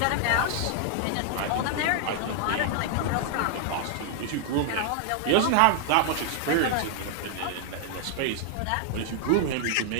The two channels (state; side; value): different; both; correlation 0.00